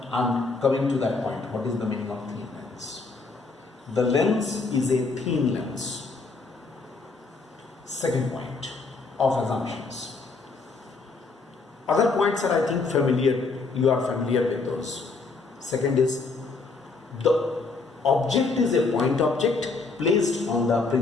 to that point. What is the meaning of thin lens? The lens is a thin lens. Second point of assumptions. Other points are, I think, familiar. You are familiar with those. Second is, the object is a point object placed on the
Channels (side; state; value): right; quieter; 4.1 dB